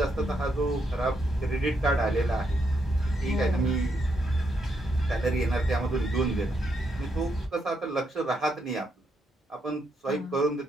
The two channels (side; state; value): both; normal; correlation 0.78